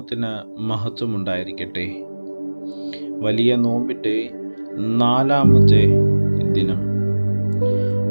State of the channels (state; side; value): inverted; both; correlation -1.00